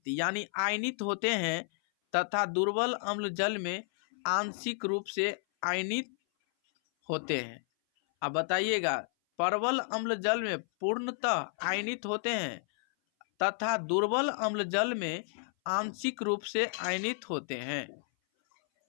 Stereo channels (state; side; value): silent; right; 57 dB below the other